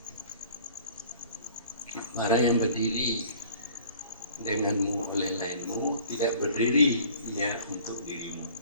Para yang berdiri denganmu oleh lainmu tidak berdiri ia untuk dirimu.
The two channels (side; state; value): both; inverted; correlation -0.51